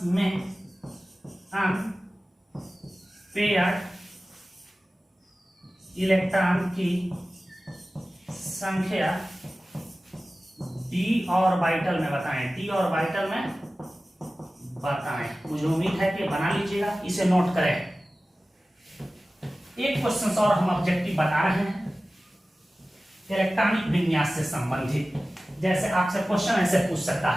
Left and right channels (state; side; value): normal; both; correlation 0.96